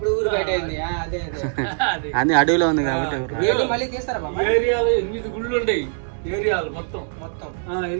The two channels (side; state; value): left; silent; digital silence